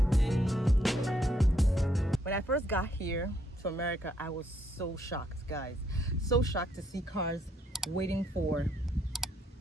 When I first got here to America, I was so shocked, guys. So shocked to see cars waiting for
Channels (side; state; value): both; normal; correlation 0.72